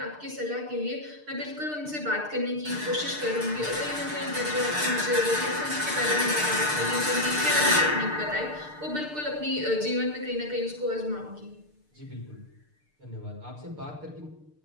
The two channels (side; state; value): left; late; 6.7 ms